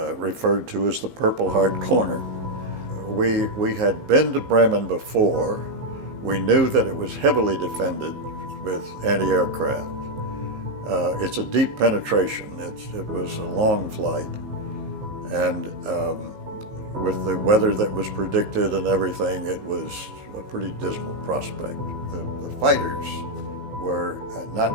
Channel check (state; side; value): late; left; 15 ms